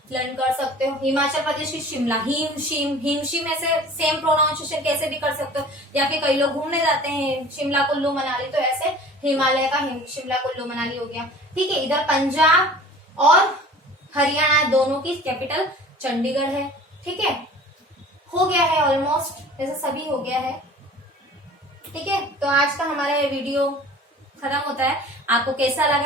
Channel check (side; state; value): both; normal; correlation 0.44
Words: लर्न कर सकते हो। हिमाचल प्रदेश की शिमला, हिमशिम ऐसे सेम प्रोनाउंसिएशन कैसे भी कर सकते हो। या फिर कई लोग घूमने जाते हैं शिमला कुल्लू मनाली तो ऐसे हिमालय का शिमला कुल्लू मनाली हो गया, ठीक है। इधर पंजाब और हरियाणा दोनों की कैपिटल चंडीगढ़ है, ठीक है। हो गया है ऑलमोस्ट, ऐसे सभी हो गया है, ठीक है। तो आज का हमारा ये वीडियो खत्म होता है। आपको कैसा